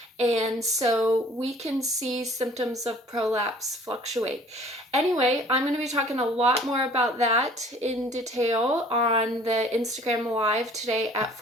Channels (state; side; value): normal; both; correlation 0.52